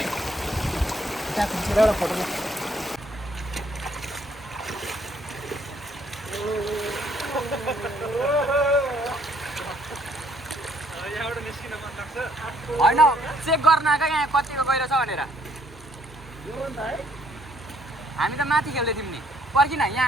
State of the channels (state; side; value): normal; both; correlation 0.66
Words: त्यहाँ खिचेर एउटा फोटो होइन चेक गर्न आएको यहाँ कतिको गहिरो छ भनेर हामी त माथि खेल्दै थियौँ नि पर्किन